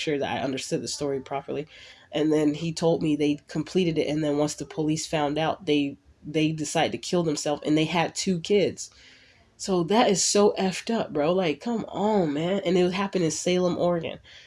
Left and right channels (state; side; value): identical; both; correlation 1.00